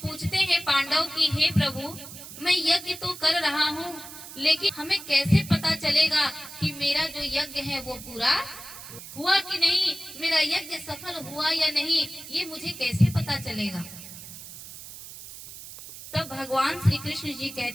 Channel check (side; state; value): right; noise; hiss, 14 dB below the sound